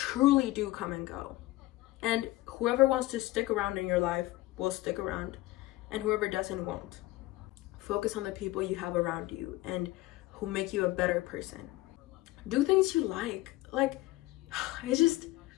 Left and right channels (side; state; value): right; quieter; 18.1 dB